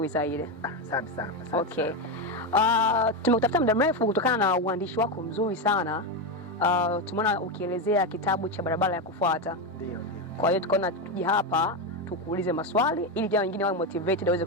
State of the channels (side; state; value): both; normal; correlation 0.11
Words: zaidi. Asante sana. Okay. Tumekutafuta muda mrefu kutokana na uandishi wako mzuri sana. Tumeona ukielezea kitabu cha barabara ya kufuata. Ndio. Kwa hiyo tukaona tuje hapa tukuulize maswali ili jamaa wengine wawe motivated waweze